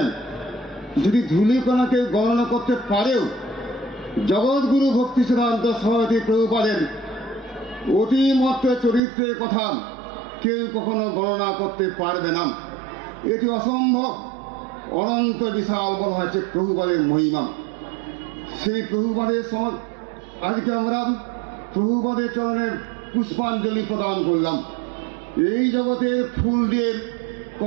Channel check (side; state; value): left; drops out; at 9.0 s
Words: যদি ধূলিকণাকে গণনা করতে পারেও জগৎগুরু ভক্তি সিদ্ধান্ত সরস্বতী প্রভুপাদের অতিমত্ত চরিত্রের কথা কেউ কখনো গণনা করতে পারবে না। এটি অসম্ভব। অনন্ত বিশাল বলা হচ্ছে প্রভুপাদের মহিমা। সেই প্রভুপাদের আজকে আমরা প্রভুপাদের চরণে পুষ্পাঞ্জলি প্রদান করলাম। এই জগতের ফুল দিয়ে